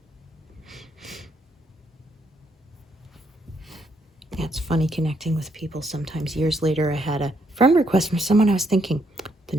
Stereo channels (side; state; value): both; normal; correlation 0.74